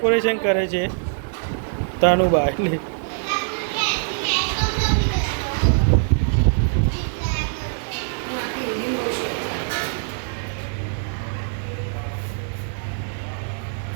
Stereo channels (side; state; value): left; silent; digital silence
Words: કરે છે. તાનું બા એટલે